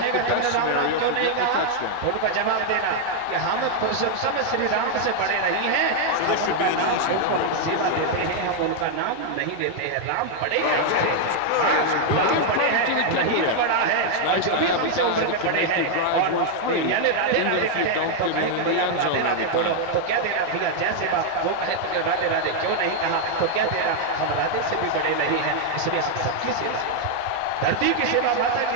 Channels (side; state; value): both; different; correlation 0.00